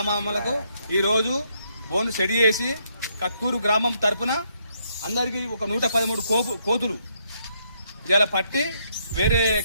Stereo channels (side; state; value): both; inverted; correlation -0.74